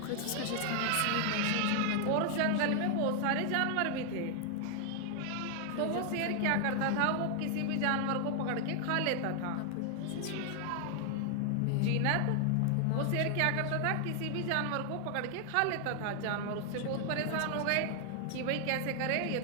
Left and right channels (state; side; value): different; both; correlation 0.00